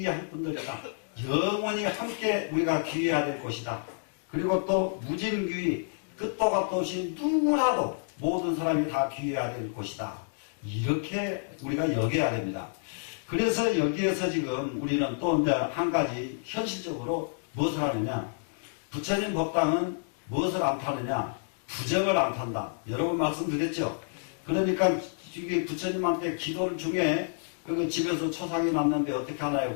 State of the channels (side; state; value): right; silent; digital silence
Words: 분들이다. 영원히 함께 우리가 귀의해야 될 것이다. 그리고 또 무진귀의 끝도 갓도 없이 누구라도 모든 사람이 다 귀의해야 될 것이다. 이렇게 우리가 여겨야 됩니다. 그래서 여기에서 지금 우리는 또 이제 한 가지 현실적으로 무엇을 하느냐. 부처님 법당은 무엇을 안 타느냐. 부정을 안 탄다. 여러 번 말씀드렸죠. 그러니까 이게 부처님한테 기도를 중에 집에서 초상이 났는데 어떻게 하나요?